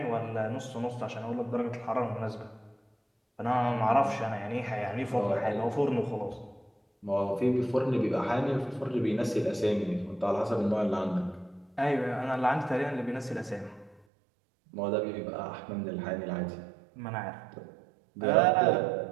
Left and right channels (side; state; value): left; drops out; at 14.0 s